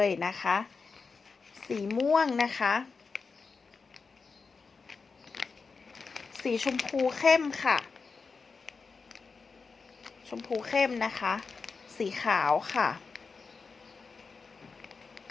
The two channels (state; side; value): quieter; right; 4.8 dB